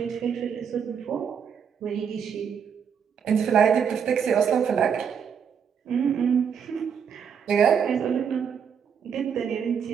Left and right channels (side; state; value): left; quieter; 7.2 dB